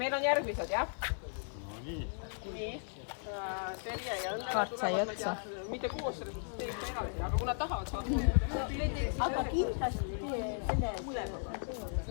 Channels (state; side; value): silent; right; 54 dB below the other